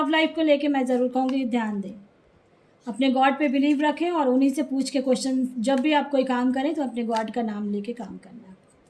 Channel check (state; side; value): identical; both; correlation 1.00